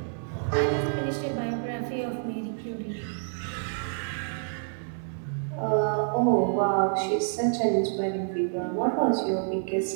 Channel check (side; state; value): left; silent; digital silence